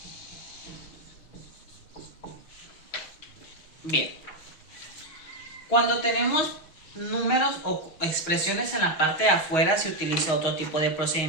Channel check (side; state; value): right; late; 6.4 ms